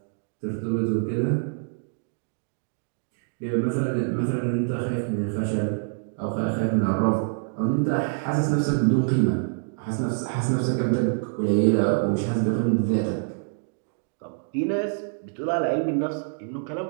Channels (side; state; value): left; silent; digital silence